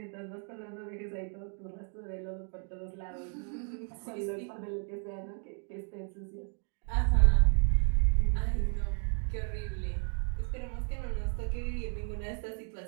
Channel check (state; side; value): quieter; left; 37.7 dB